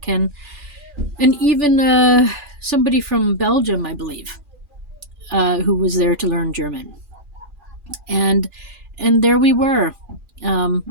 and even somebody from Belgium, I believe, who was there to learn German. And there we were,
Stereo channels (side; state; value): left; late; 2.4 ms